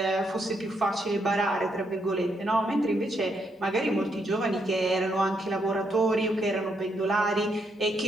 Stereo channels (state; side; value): normal; both; correlation 0.77